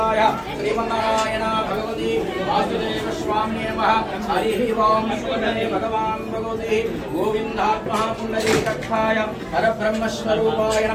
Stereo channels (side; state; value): both; identical; correlation 1.00